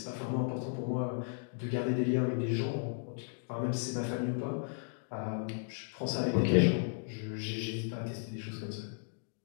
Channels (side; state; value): right; silent; digital silence